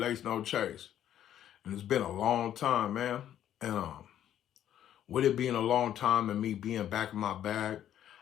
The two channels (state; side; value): quieter; right; 11.0 dB